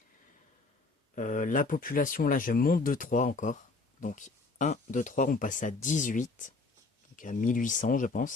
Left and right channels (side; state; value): right; quieter; 3.8 dB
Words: La population, là, je monte de 3 encore. Donc 1, 2, 3, on passe à 18. Donc à 1800, je